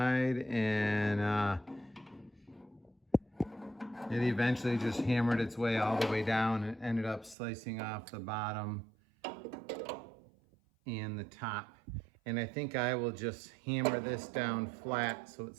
and it eventually just hammered its way all the way down and ended up slicing off the bottom and the top. And I think I will just hammer this down flat so it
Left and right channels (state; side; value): drops out; left; at 7.4 s